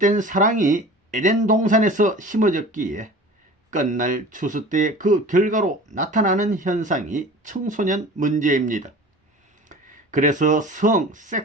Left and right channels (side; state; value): both; normal; correlation 0.40